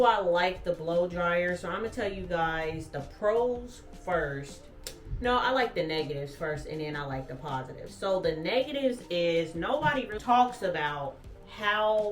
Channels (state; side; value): identical; both; correlation 1.00